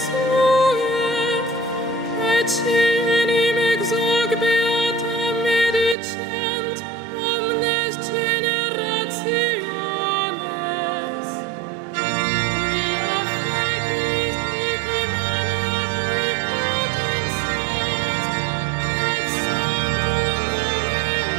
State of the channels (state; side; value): drops out; left; at 6.0 s